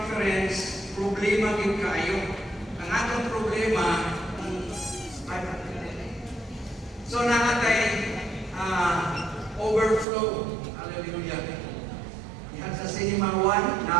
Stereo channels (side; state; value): left; drops out; at 10.1 s